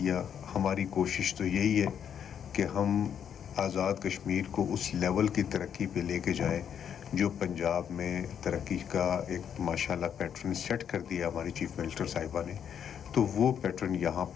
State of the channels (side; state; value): right; quieter; 8.5 dB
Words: ہماری کوشش تو یہی ہے کہ ہم آزاد کشمیر کو اس لیول کی ترقی پہ لے کے جائیں جو پنجاب میں ترقی کا ایک ماشاءاللہ پیٹرن سیٹ کر دیا ہماری چیف منسٹر صاحبہ نے، تو وہ پیٹرن یہاں